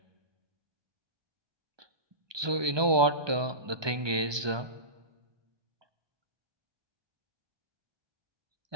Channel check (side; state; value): left; late; 1.2 ms